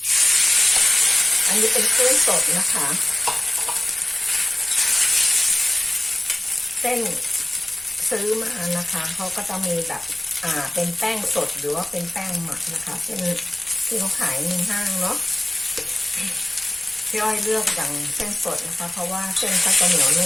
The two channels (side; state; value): left; noise; rumble, 27 dB below the sound